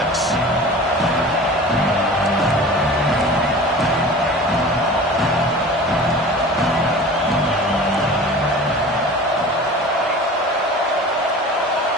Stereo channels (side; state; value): both; normal; correlation 0.39